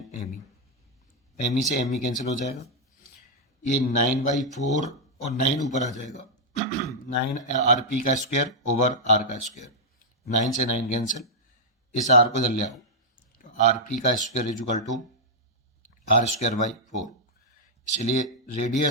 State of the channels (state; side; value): normal; both; correlation -0.06